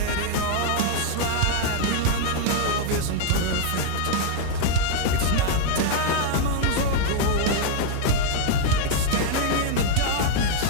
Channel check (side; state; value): both; different; correlation 0.00